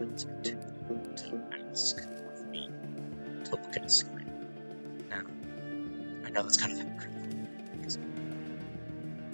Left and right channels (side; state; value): both; inverted; correlation -1.00